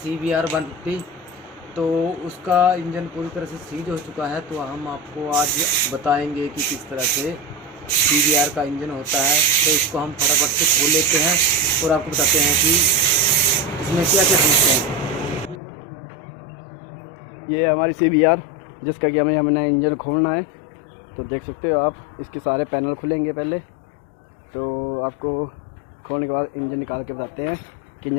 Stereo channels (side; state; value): right; drops out; at 15.6 s